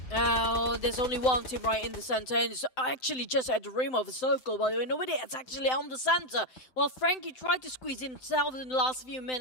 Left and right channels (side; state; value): right; late; 7.8 ms